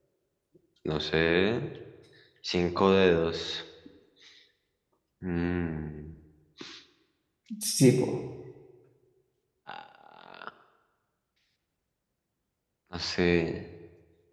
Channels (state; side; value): identical; both; correlation 1.00